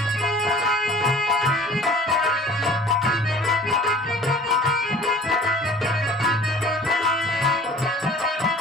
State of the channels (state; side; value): normal; both; correlation 0.46